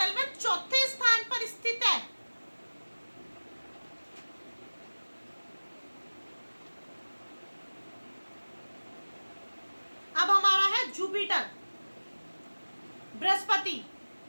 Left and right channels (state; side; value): inverted; both; correlation -1.00